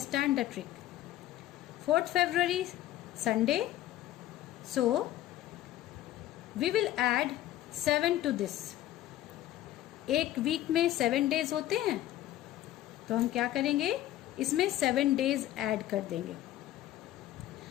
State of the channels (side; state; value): right; quieter; 13.8 dB